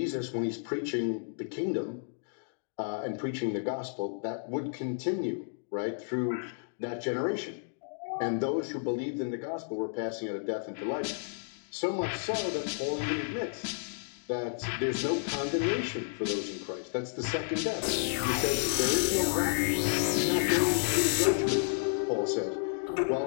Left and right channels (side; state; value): right; silent; digital silence